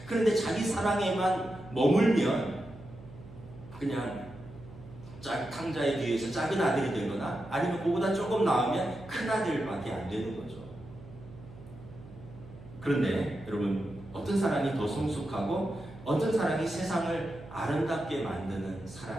그런데 자기 사랑에만 머물면 그냥 탕자의 뒤에서 작은 아들이 되거나 아니면 그보다 조금 나으면 큰 아들밖에 안 되는 거죠. 그런데 여러분 어떤 사랑이 더 성숙하고 어떤 사랑이 세상을 아름답게 만드는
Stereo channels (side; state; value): right; noise; hum, 18 dB below the sound